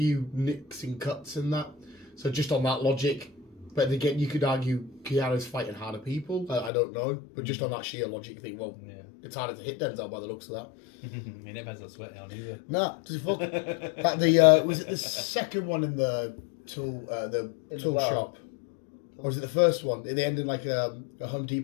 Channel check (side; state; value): right; drops out; at 6.7 s